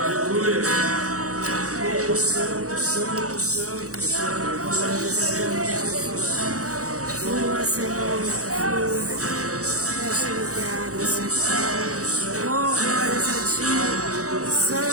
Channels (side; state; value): left; late; 0.66 ms